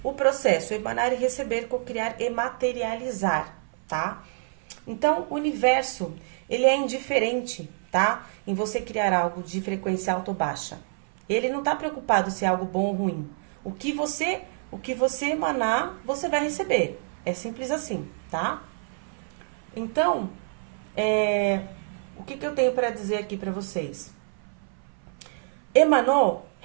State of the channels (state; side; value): silent; left; 56 dB below the other